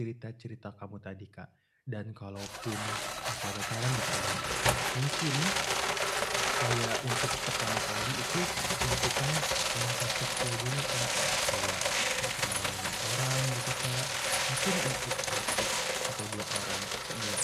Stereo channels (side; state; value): both; identical; correlation 1.00